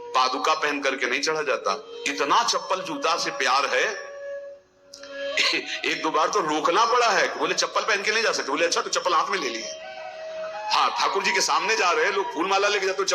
पादुका पहन करके नहीं चढ़ा जाता। इतना चप्पल जूता से प्यार है, एक दो बार तो रोकना पड़ा है। बोले चप्पल पहन के नहीं जा सकते। बोले अच्छा तो चप्पल हाथ में ले लिए। हाँ ठाकुर जी के सामने जा रहे हैं लोग, फूल माला लेके जाते तो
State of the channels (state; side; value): identical; both; correlation 1.00